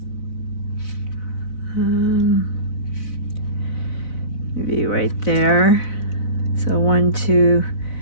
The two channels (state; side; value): late; right; 4.0 ms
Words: Maybe right there. So 1, 2.